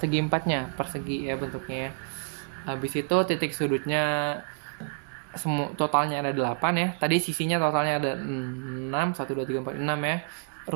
persegi ya bentuknya ya. Habis itu titik sudutnya semua totalnya ada 8 ya. Tadi sisinya totalnya ada 6, 1 2 3 4 6 ya.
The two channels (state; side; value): silent; left; 59 dB below the other